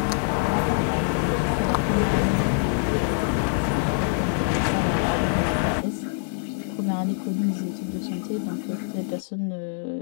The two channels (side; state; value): right; silent; digital silence